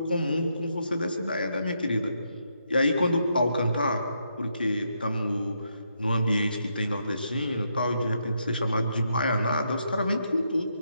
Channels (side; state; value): both; inverted; correlation -0.79